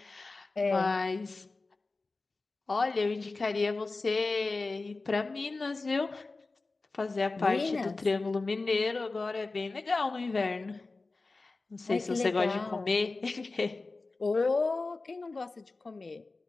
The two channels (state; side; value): quieter; right; 3.6 dB